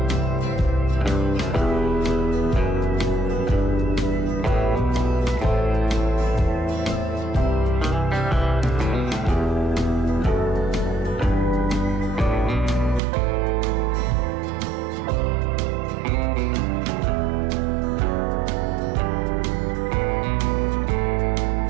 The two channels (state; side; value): drops out; left; at 13.0 s